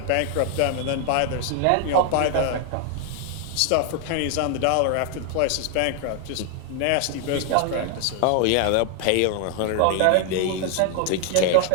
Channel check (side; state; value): both; different; correlation 0.00